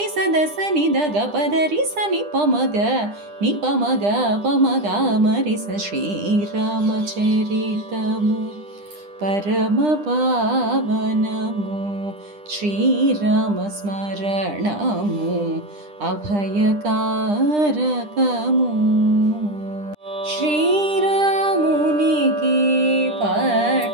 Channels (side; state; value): left; late; 9.9 ms